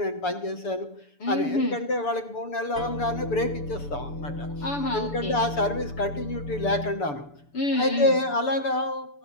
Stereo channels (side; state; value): right; late; 6.9 ms